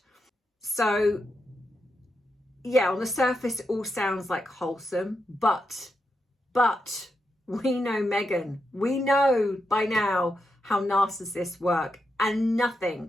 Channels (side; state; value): both; normal; correlation 0.85